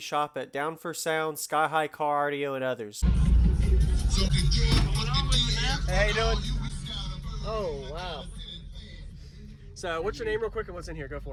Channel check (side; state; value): both; identical; correlation 1.00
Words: at Down for Sound, SkyHigh Car Audio, and others. What's going on with you, man? Hey, how you doing? Oh, wow. So, what's your name real quick and what's in here? Go